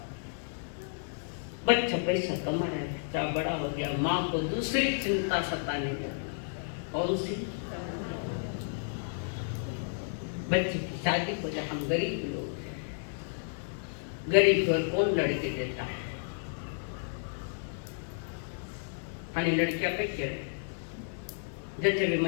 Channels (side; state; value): right; silent; digital silence